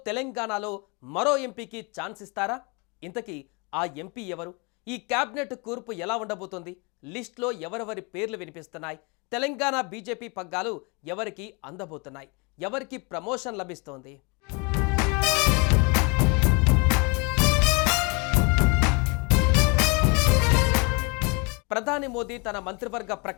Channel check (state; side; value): quieter; right; 30.6 dB